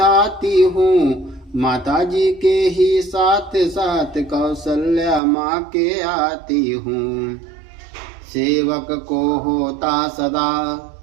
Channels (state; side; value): drops out; left; at 5.2 s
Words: हूँ। माता जी के ही साथ साथ कौशल्या माँ के आती हूँ। सेवक को होता सदा